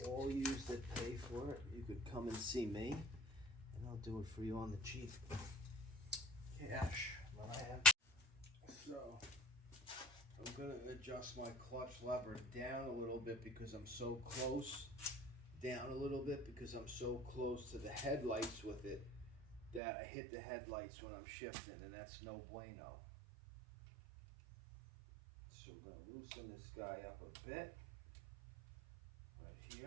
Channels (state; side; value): drops out; left; at 19.8 s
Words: all yous that pay for it, you could come and see me, and I'll do it for you on the cheap. Cash, but I have. So, I'm going to adjust my clutch lever down a little bit because I'm so close. Down a little bit because I'm so close to the headlights with it that I hit the headlights when I'm shifting, and that's no bueno. So we're going to loosen this guy up a bit. Right